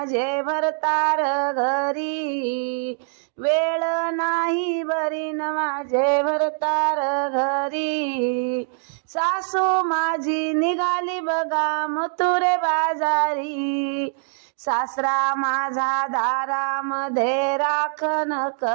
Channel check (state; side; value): silent; left; 63 dB below the other